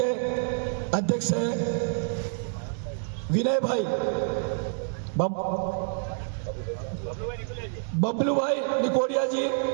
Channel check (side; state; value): left; silent; digital silence